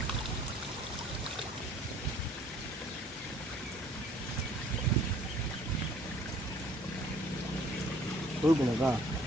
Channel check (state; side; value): normal; both; correlation 0.57